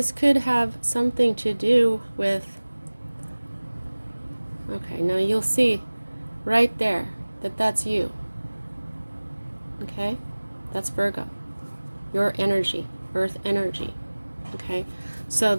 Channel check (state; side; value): inverted; both; correlation -1.00